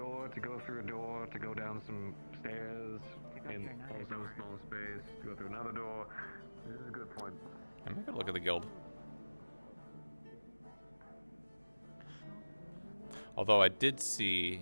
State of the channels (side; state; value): both; inverted; correlation -1.00